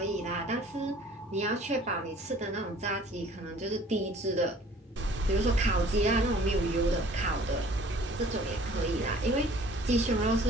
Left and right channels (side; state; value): both; normal; correlation 0.52